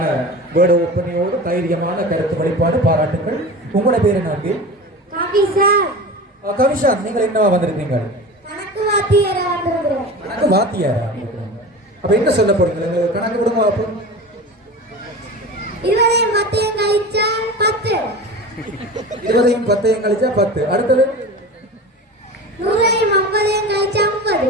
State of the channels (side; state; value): both; normal; correlation 0.32